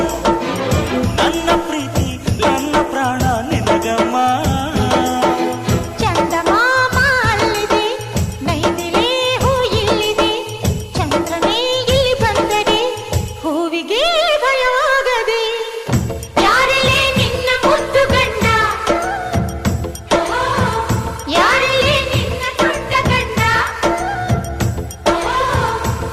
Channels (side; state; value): both; identical; correlation 1.00